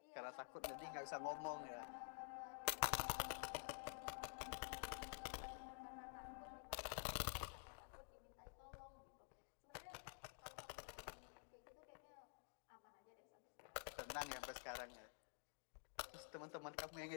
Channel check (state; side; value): silent; right; digital silence